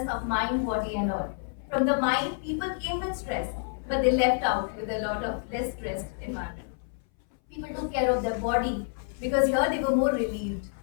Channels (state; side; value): silent; right; 59 dB below the other